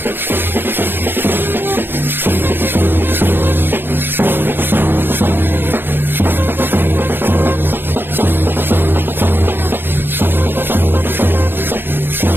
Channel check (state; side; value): late; left; 0.10 ms